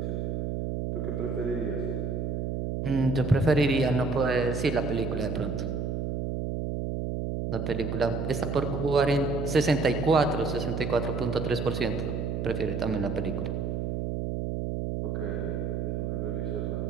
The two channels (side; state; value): right; noise; hum, 1 dB below the sound